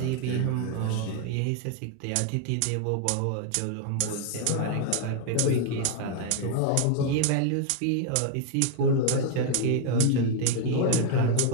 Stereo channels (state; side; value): different; both; correlation 0.00